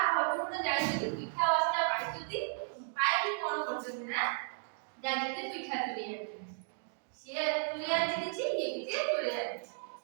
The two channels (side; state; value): left; silent; digital silence